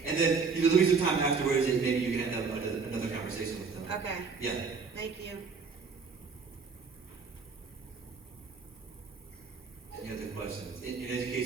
And then there'll be some time afterwards, and maybe you can have another conversation with them. Okay. Yeah. Thank you. Any other questions? In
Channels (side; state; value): left; quieter; 5.1 dB